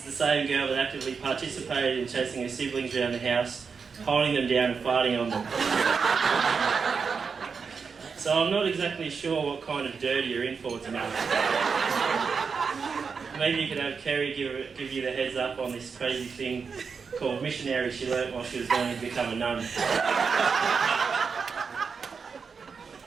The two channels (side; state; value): left; quieter; 5.5 dB